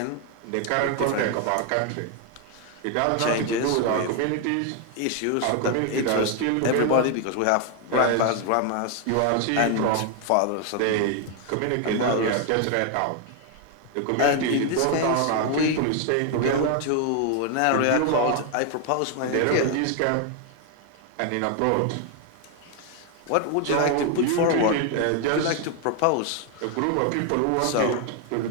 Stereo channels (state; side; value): different; both; correlation 0.00